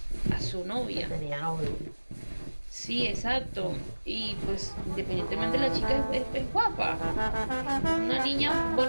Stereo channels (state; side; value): inverted; both; correlation -1.00